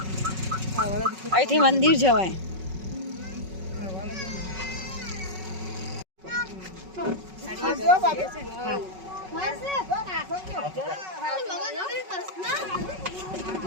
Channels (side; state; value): left; late; 5.4 ms